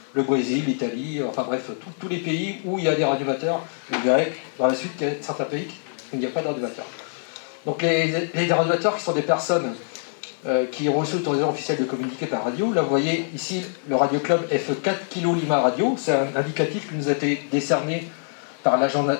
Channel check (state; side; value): silent; right; 58 dB below the other